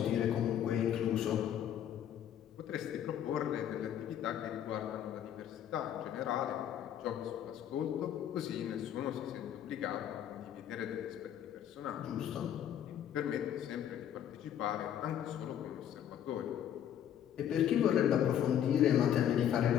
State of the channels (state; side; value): quieter; right; 10.1 dB